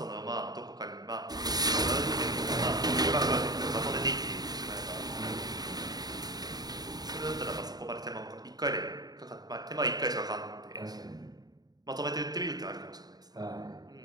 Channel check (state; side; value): late; left; 0.19 ms